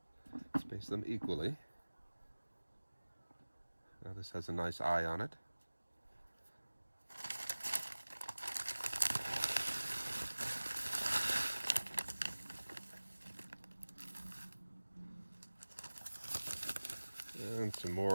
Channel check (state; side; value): inverted; both; correlation -1.00